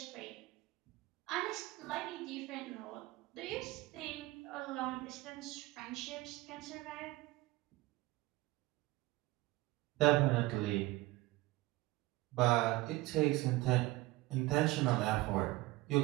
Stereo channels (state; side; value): quieter; left; 19.5 dB